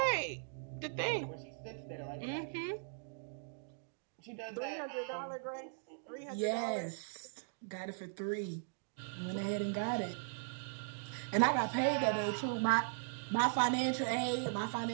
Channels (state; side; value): silent; left; digital silence